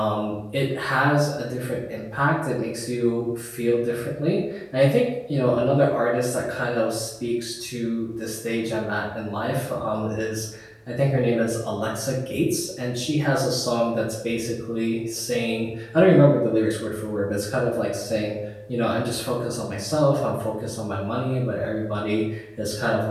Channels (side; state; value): both; identical; correlation 1.00